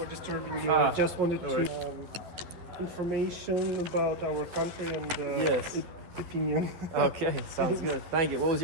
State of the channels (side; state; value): left; late; 12 ms